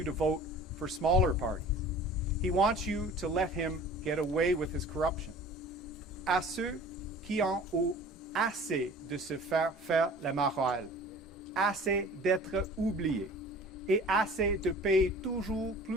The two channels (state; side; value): normal; both; correlation 0.44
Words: to vote for smaller parties. He wants you to let him get away with his corruption. À ceux qui en ont assez de se faire la morale, assez d'être oubliés et assez de payer toujours